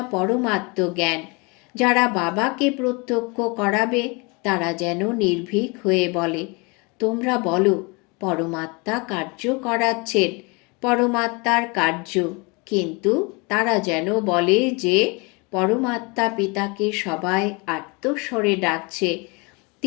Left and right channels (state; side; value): quieter; right; 29.0 dB